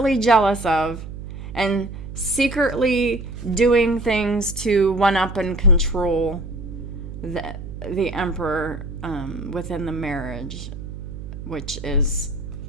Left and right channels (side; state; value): right; noise; hum, 10 dB below the sound